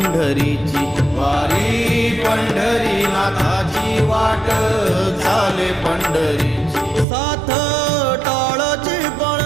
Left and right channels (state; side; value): drops out; left; at 7.1 s